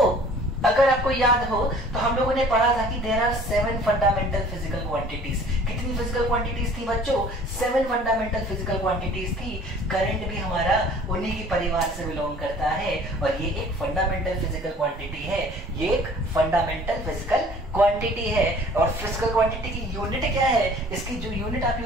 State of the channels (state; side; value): normal; both; correlation 0.50